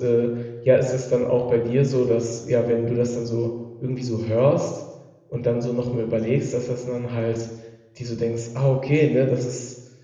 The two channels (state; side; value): identical; both; correlation 1.00